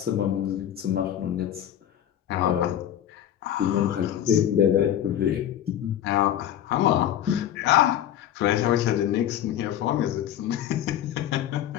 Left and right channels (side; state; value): right; quieter; 11.0 dB